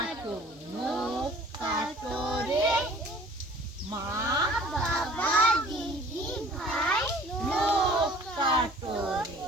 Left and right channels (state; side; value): normal; both; correlation 0.51